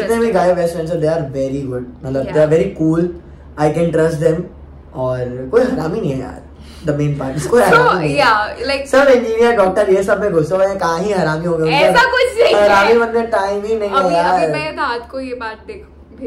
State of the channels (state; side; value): identical; both; correlation 1.00